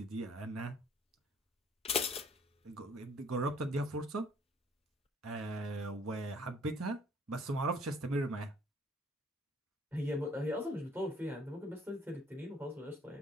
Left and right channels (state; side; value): normal; both; correlation 0.59